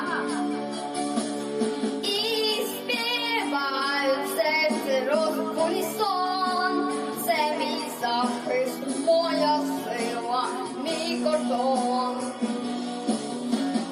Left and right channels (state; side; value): identical; both; correlation 1.00